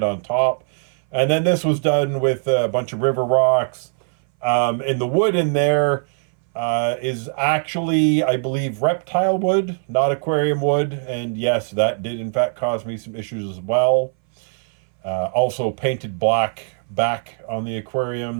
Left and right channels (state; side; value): silent; left; 60 dB below the other